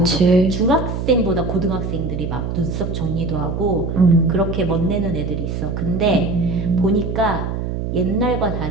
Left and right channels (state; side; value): noise; right; hum, 3 dB below the sound